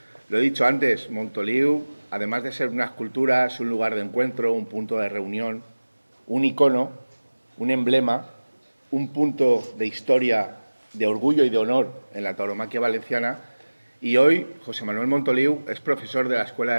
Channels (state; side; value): inverted; both; correlation -1.00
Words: Lo he dicho antes, Montoliu, además de ser una escultura, es un lugar de encuentro, un punto de reunión, un icono, un emblema, un punto de historia, de orgullo y de honor en la tauromaquia valenciana. Y hoy José Manuel Montoliu es profesor de la Escuela